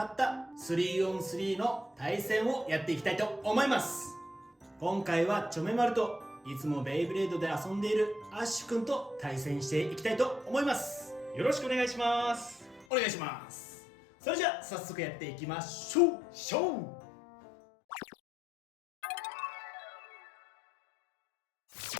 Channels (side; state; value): right; drops out; at 12.9 s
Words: った 3on3 の対戦をやっていきたいと思います。今回はチョメマルといつもベイブレードで遊んでいるアッシュくんと対戦していきたいと思います。よろしくお願いします。お願いします。それじゃあ早速やっていきましょう。